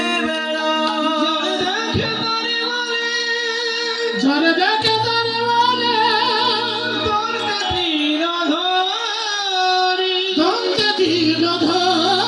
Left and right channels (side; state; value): both; identical; correlation 1.00